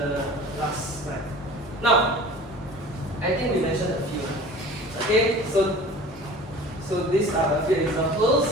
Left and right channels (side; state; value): both; normal; correlation 0.42